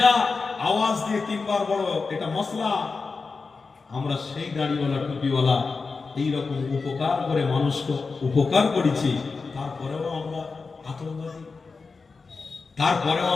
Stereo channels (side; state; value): right; quieter; 4.4 dB